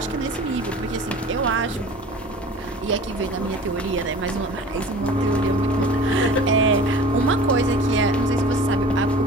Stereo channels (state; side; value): normal; both; correlation 0.42